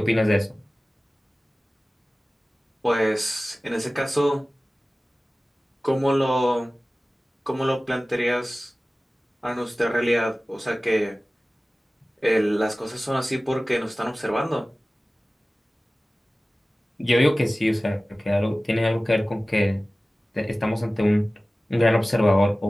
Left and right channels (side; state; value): both; normal; correlation 0.97